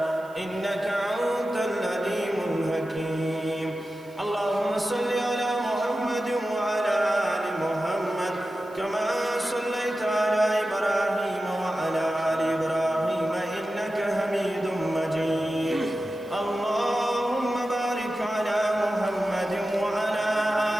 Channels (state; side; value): noise; right; hiss, 28 dB below the sound